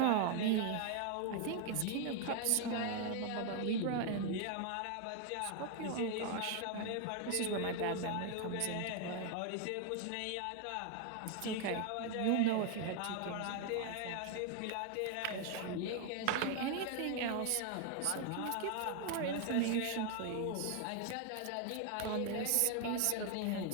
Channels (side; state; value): both; different; correlation 0.00